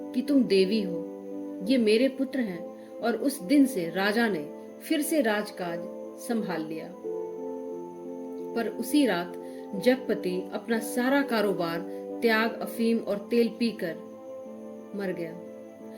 कि तुम देवी हो, ये मेरे पुत्र हैं। और उस दिन से राजा ने फिर से राजकाज संभाल लिया। पर उसी रात जगपति अपना सारा कारोबार त्याग, अफीम और तेल पीकर मर गया,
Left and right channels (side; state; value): both; identical; correlation 1.00